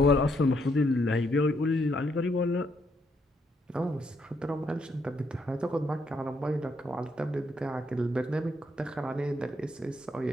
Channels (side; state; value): both; normal; correlation 0.75